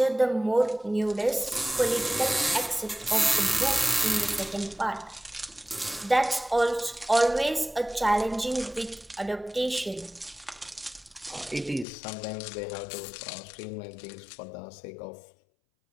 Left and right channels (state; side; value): drops out; right; at 11.9 s